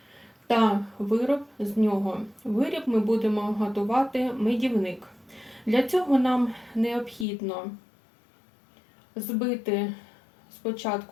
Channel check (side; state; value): right; drops out; at 7.2 s